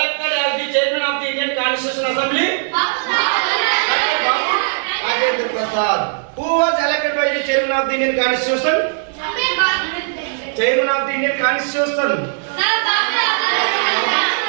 as the chairman of the Indian Constitution Assembly? Dr. Babu Rajendra Prasad. Who was elected by the chairman of the Indian Constitution? Chairman of the Indian Constitution.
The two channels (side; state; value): left; silent; 67 dB below the other